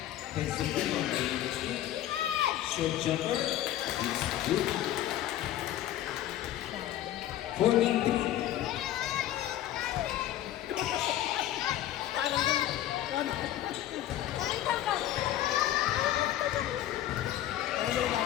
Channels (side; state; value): right; quieter; 12.9 dB